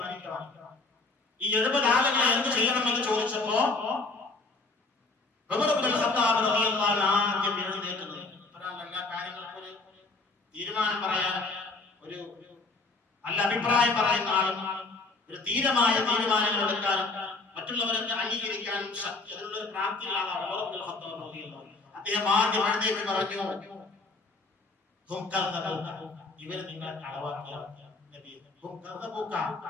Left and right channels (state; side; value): quieter; right; 3.6 dB